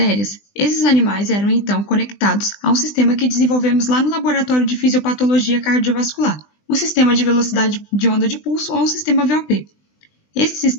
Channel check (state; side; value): late; right; 20 ms